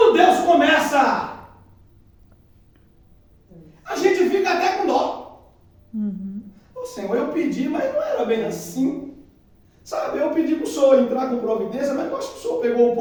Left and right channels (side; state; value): both; identical; correlation 1.00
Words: Deus começa, a gente fica até com dó. Ô Senhor, eu pedi, mas não era bem assim. Sabe, eu pedi para o Senhor entrar com providência, mas eu acho que o Senhor pegou um